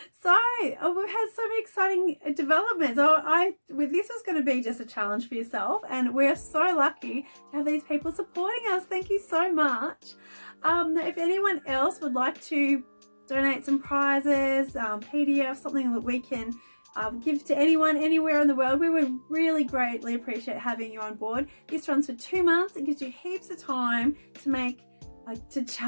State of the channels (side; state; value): both; inverted; correlation -1.00